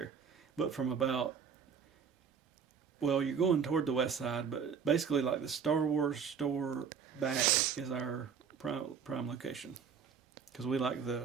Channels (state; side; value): quieter; left; 6.8 dB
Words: but from about. Well, you're going toward the west side, but basically like the Star Wars store back is our prime location. Because we like